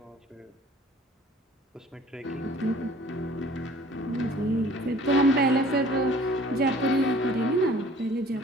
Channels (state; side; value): normal; both; correlation 0.51